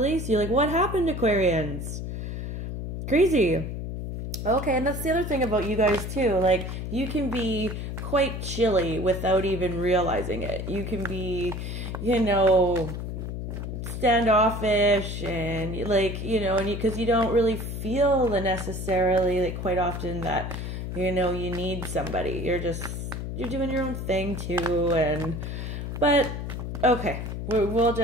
you. Like, what happened, Aquarians? Crazy. Okay, and that's the other thing about you guys too. Like, you can be quite chilly without even realizing it. You can be, you know, standoffish and like, you know, and because you don't really feel the necessarily, like, quite often that, you know, you need somebody. You're doing your own thing too. But okay, we're going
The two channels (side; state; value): left; noise; hum, 5 dB below the sound